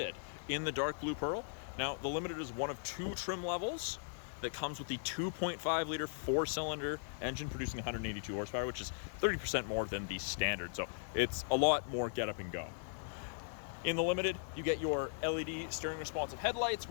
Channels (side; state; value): right; silent; digital silence